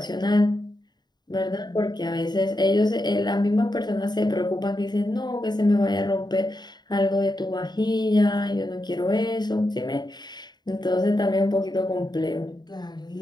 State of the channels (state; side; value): late; right; 0.20 ms